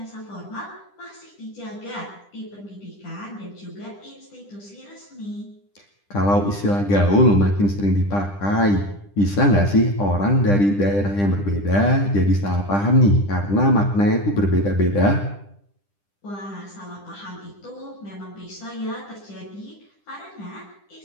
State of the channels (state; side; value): late; right; 10 ms